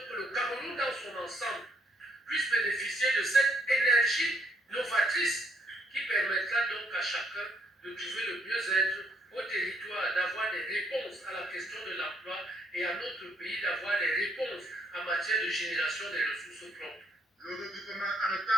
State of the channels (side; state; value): both; normal; correlation 0.69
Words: que le Cameroun dans son ensemble puisse bénéficier de cette énergie novatrice qui permettra donc à chacun de trouver le mieux-être au territoire, d'avoir des réponses à la question de l'emploi et à notre pays d'avoir des réponses en matière de génération des ressources propres. Le regroupement